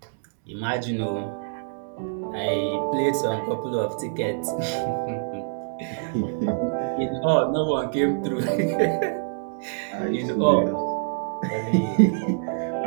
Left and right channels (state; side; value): silent; left; digital silence